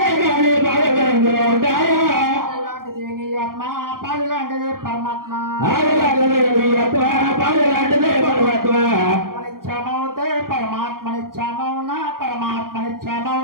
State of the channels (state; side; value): late; left; 0.91 ms